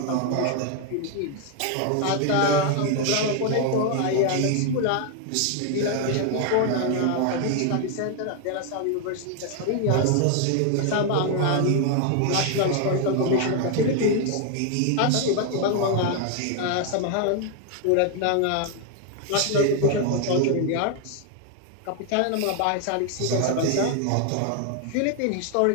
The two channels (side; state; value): both; different; correlation 0.00